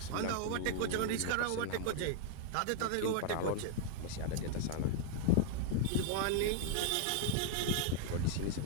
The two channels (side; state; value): both; different; correlation 0.00